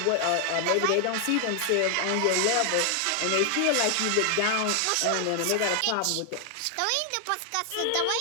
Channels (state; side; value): different; both; correlation 0.00